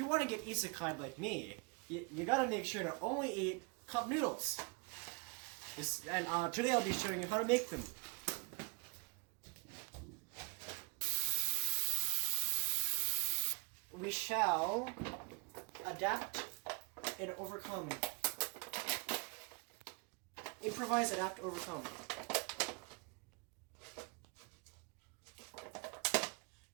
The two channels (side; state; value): left; quieter; 32.0 dB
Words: want to get Isekai'd like me, you gotta make sure to only eat cup noodles. Today I'll be showing you how to make them. We shall adapt and overcome. Improvise, adapt, overcome.